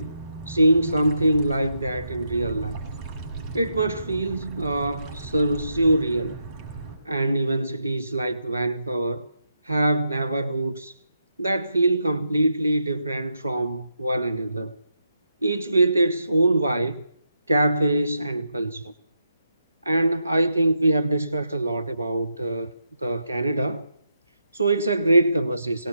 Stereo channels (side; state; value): both; inverted; correlation -0.82